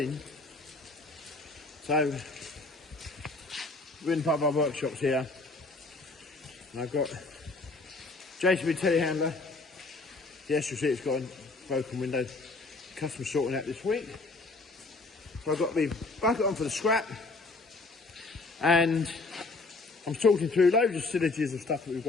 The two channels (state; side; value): quieter; right; 3.5 dB